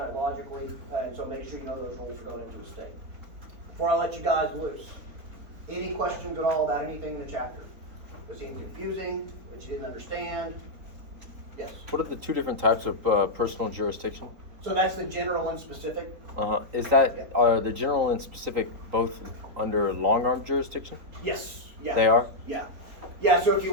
it logically, and so make sure you know those rules are going into the state. Before I let you guys loose, any questions at all about anything in the chapter? Was it confusing, that you didn't understand? Yes? What are the two different types of personal jurisdiction? So that's the general and specific? Is that, are the general and specific both under long arm jurisdiction? Yes, yeah. They are? Yeah. Yeah, so if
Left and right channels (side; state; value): left; late; 3.9 ms